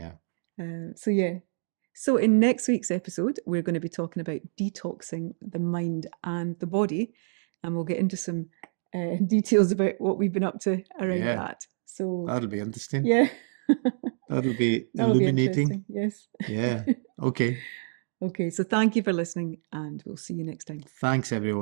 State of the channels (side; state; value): left; silent; digital silence